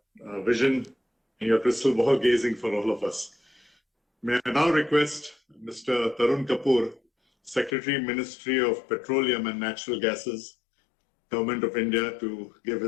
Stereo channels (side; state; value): right; drops out; at 7.8 s